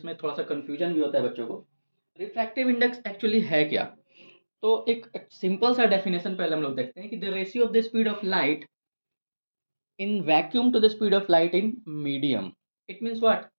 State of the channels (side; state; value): both; inverted; correlation -1.00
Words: में थोड़ा सा कन्फ्यूजन भी होता है बच्चों को। रिफ्रैक्टिव इंडेक्स एक्चुअली है क्या? तो एक सिंपल सा डेफिनेशन पहले हम लोग देखते हैं कि the ratio of the speed of light in vacuum to the speed of light in medium. It means what,